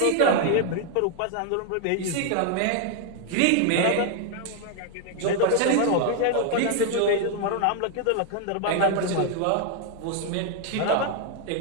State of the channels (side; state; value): both; different; correlation 0.00